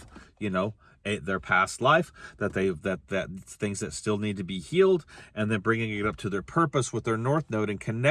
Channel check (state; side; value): identical; both; correlation 1.00